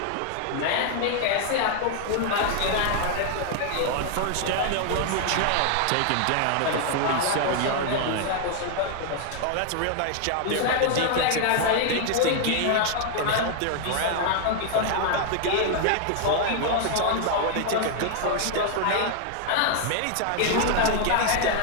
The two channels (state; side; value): different; both; correlation 0.00